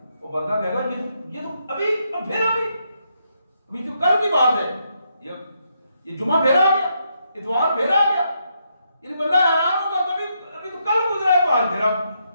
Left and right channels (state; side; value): inverted; both; correlation -0.79